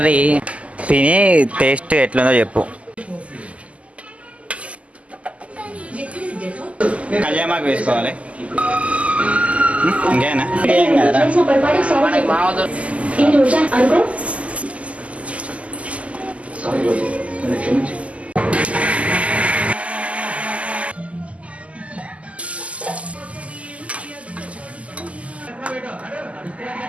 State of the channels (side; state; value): left; late; 0.066 ms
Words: తిని టేస్ట్ ఎట్లుందో చెప్పు. కళ్యామాకు వేసుకోవాలి. ఇంకేనా ఏం కదరా. మనకి మామూలు